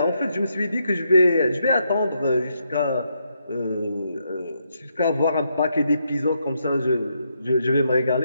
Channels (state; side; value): inverted; both; correlation -0.79